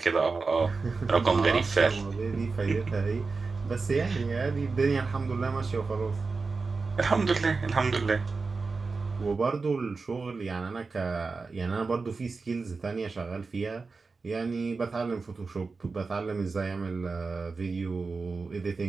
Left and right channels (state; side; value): quieter; left; 4.2 dB